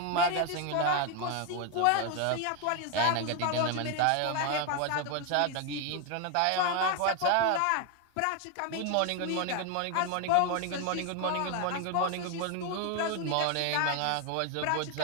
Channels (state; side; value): different; both; correlation 0.01